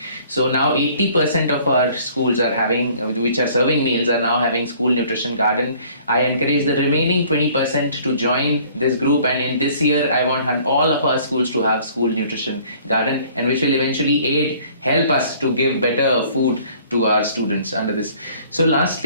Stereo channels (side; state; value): both; inverted; correlation -0.55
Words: So now 80% of our schools are having, which are serving meals, are now having school nutrition garden. I encourage the remaining 20% to join this group, and in this year I want all of our schools to have school nutrition garden, and which will eventually help us to give better food to our students under this. So